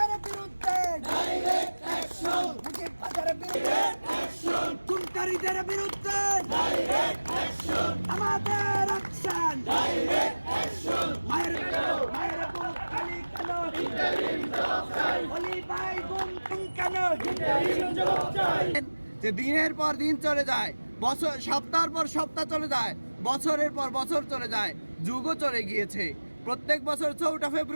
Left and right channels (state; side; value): inverted; both; correlation -1.00